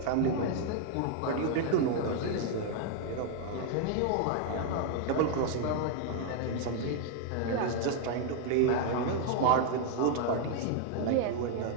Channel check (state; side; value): different; both; correlation 0.00